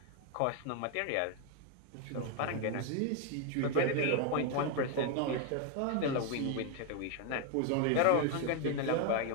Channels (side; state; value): both; different; correlation 0.01